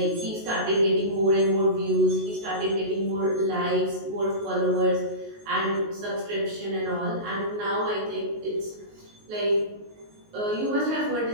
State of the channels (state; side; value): late; left; 19 ms